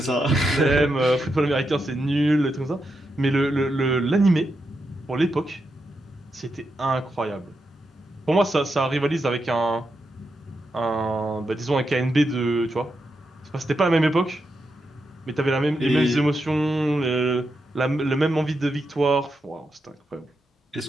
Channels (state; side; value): normal; both; correlation 0.85